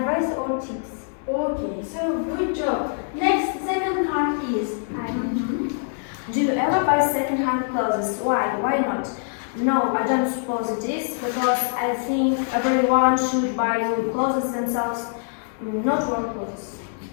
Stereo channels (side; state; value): right; silent; digital silence